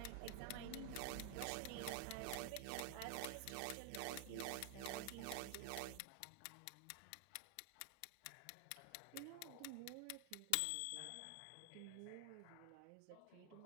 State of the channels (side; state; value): both; different; correlation 0.00